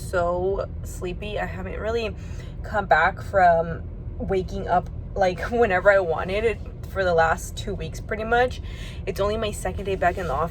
sleepy. I haven't really come back from waking up like whenever I wanted it for the last 2 weeks pretty much. It's only my second day back in the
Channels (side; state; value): both; identical; correlation 1.00